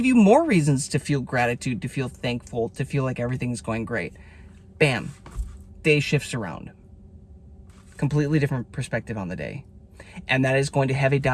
you more reasons to feel gratitude, to feel thankful, to feel like everything's going great. Bam. Day shifts around. Completely different perspective on the day. And that is going to have a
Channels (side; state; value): both; identical; correlation 1.00